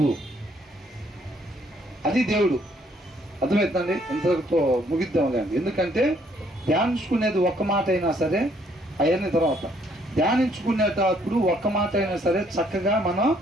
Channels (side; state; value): both; normal; correlation 0.66